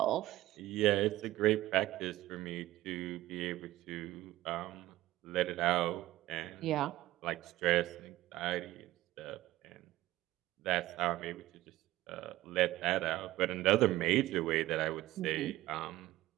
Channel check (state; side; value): quieter; left; 16.2 dB